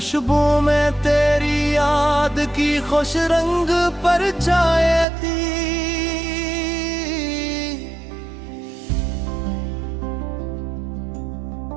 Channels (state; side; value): drops out; left; at 5.1 s